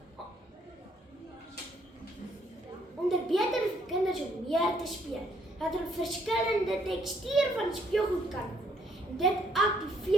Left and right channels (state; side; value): normal; both; correlation 0.68